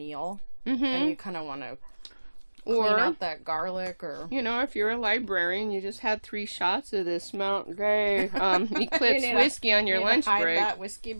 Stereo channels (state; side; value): inverted; both; correlation -1.00